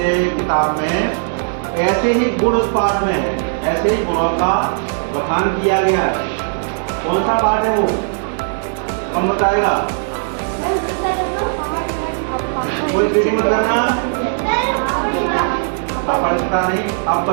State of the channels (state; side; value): silent; left; digital silence